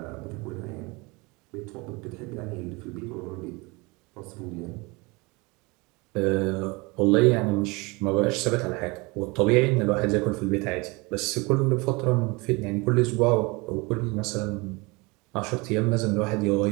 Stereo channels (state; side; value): quieter; left; 26.1 dB